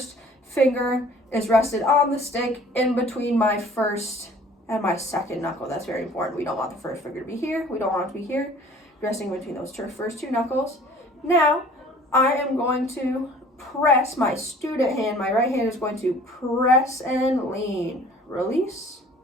finger is rested on the stick in between my first and my second knuckle. That's very important. We don't want the first finger to be here. We don't want it to be here. Resting between those first two knuckles. Now, I am going to press my student hand. My right hand is going to press and lean. Release.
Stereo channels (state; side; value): normal; both; correlation 0.51